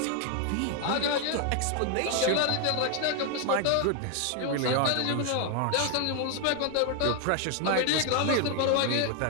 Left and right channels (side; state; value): both; different; correlation 0.00